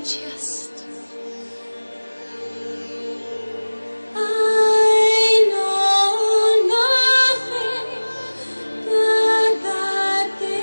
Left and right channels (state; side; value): inverted; both; correlation -1.00